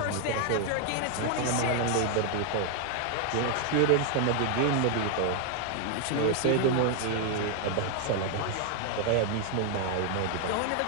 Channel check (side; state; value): both; different; correlation 0.00